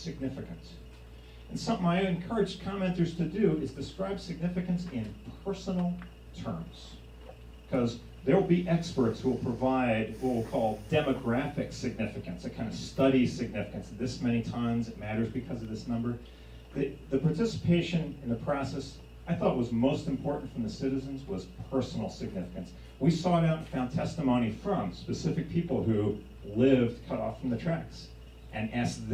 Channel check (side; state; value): both; identical; correlation 1.00